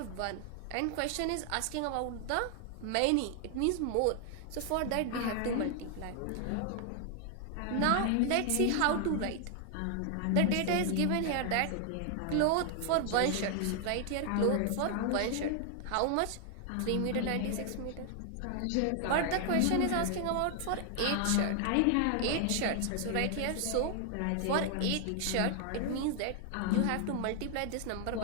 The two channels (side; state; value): both; different; correlation 0.00